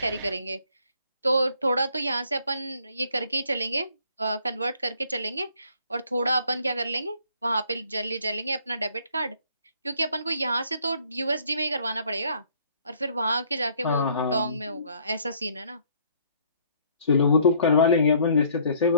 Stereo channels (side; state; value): both; inverted; correlation -0.62